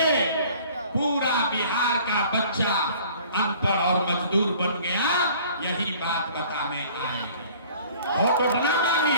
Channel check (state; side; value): inverted; both; correlation -0.51